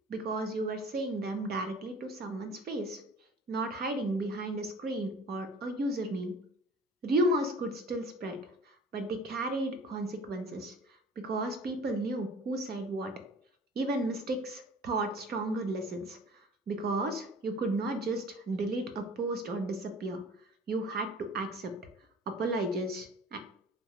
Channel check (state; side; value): normal; both; correlation 0.45